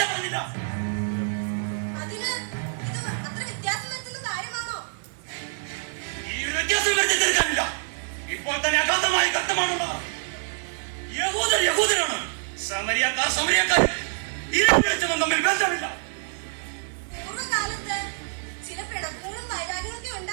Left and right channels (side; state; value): left; silent; 61 dB below the other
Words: പറഞ്ഞില്ല. അതിന് ഇത് അത്ര വ്യത്യാസം വരുത്തുന്ന കാര്യമാണോ? ഈ വ്യത്യാസം വരുത്തി തീർക്കാനില്ല. ഇപ്പോൾ തന്നെ അഗാധമായ ഘട്ടമാണുള്ളത്. യഹൂദരാണ്, സമരിയക്കാർ. ഇരുവരും തമ്മിൽ ബന്ധമില്ല. പൂർവ്വകാലത്ത് ചില പിണക്കങ്ങളും വൈരാഗ്യങ്ങളൊക്കെ